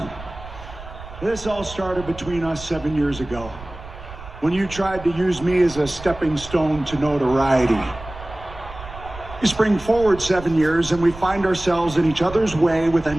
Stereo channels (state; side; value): noise; right; rumble, 15 dB below the sound